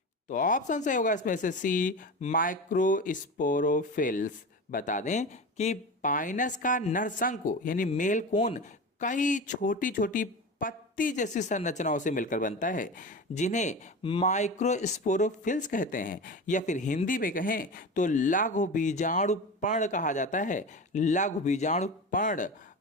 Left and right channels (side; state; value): both; normal; correlation 0.28